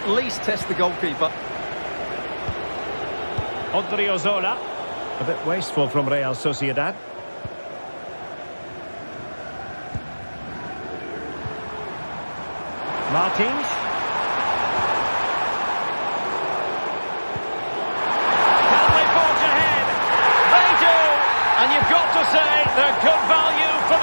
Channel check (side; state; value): both; inverted; correlation -1.00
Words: least test the goalkeeper. Odriozola. A bit wasteful from Real Sociedad. Martins. Can they forge ahead? They do! And you've got to say they're good value for